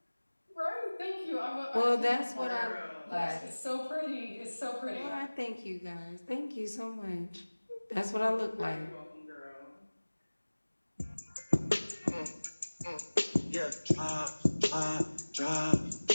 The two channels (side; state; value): both; inverted; correlation -1.00